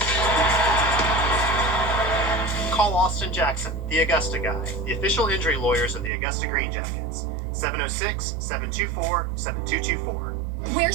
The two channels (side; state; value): left; drops out; at 6.1 s